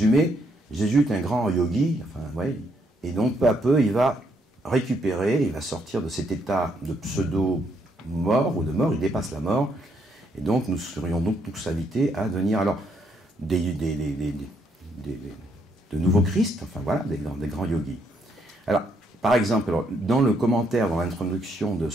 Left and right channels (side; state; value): both; normal; correlation 0.73